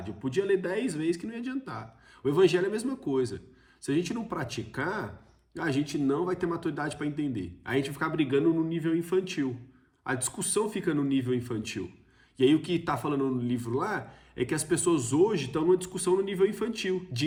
Eu podia ler 10 vezes que não ia adiantar. O evangelho é a mesma coisa. Se a gente não praticar, a gente não vai ter maturidade para entender. Aí a gente vai ficar brigando no nível infantil. A discussão fica no nível infantil. E aí o que está falando no livro lá é que as pessoas hoje estão numa discussão no nível infantil, de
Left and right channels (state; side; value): identical; both; correlation 1.00